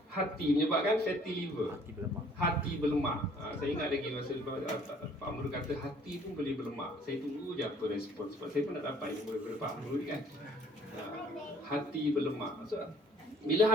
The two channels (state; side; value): normal; both; correlation 0.58